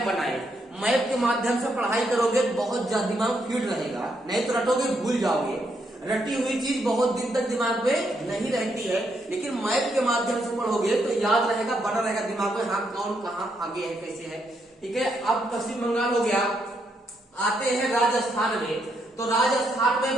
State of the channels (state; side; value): normal; both; correlation 0.77